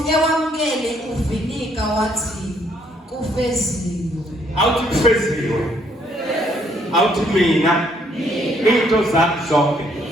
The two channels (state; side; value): normal; both; correlation 0.68